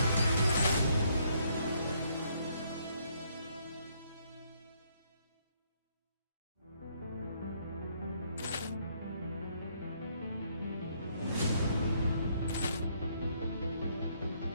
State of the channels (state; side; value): inverted; both; correlation -0.69